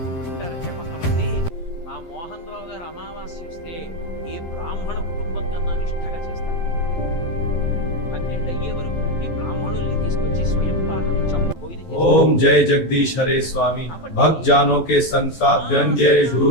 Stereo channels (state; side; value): late; right; 12 ms